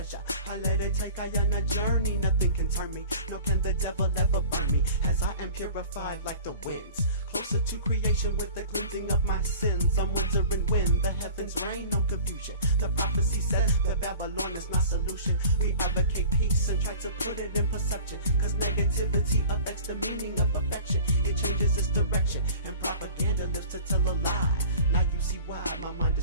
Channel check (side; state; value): both; inverted; correlation -0.42